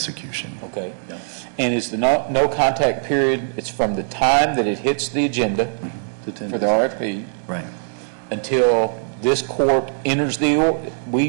Okay. And is the no contact period, it's from the time that it hits the agenda To 10 for the days. RFP Right. until this court enters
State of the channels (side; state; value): left; silent; digital silence